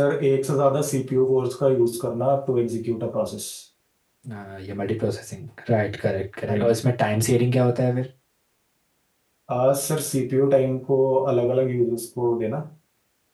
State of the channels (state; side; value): identical; both; correlation 1.00